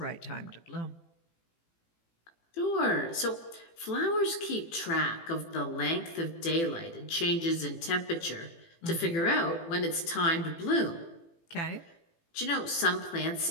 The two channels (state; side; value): late; right; 18 ms